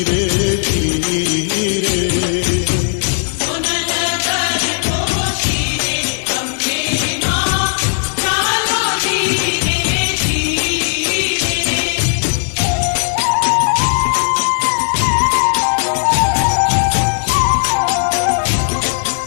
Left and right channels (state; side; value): silent; right; digital silence